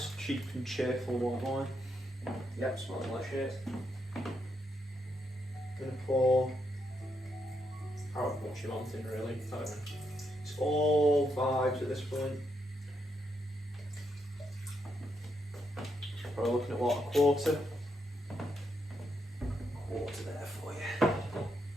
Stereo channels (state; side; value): normal; both; correlation 0.80